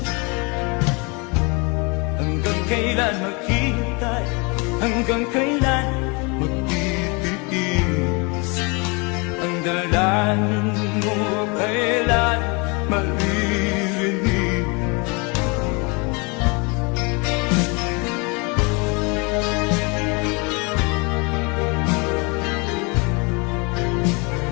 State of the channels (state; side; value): quieter; right; 30.1 dB